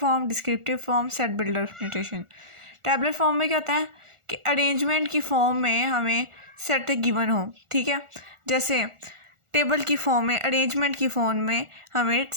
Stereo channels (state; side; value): late; left; 1.4 ms